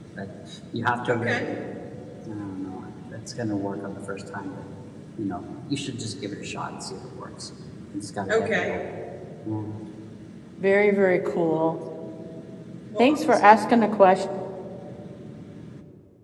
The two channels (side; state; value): both; identical; correlation 1.00